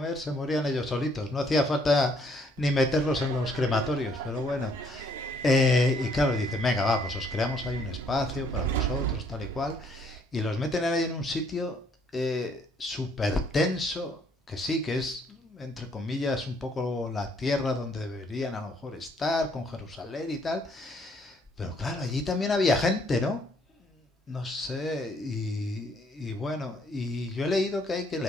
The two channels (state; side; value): normal; both; correlation 0.66